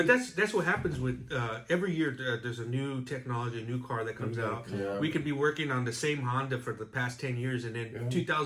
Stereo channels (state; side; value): identical; both; correlation 1.00